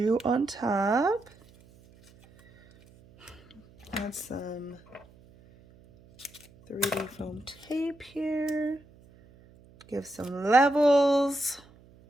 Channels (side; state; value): right; noise; hum, 26 dB below the sound